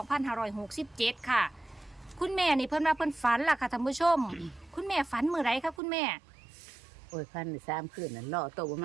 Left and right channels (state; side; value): drops out; left; at 5.8 s